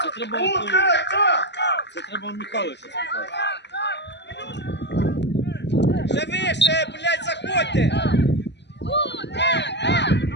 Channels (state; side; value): late; right; 0.51 ms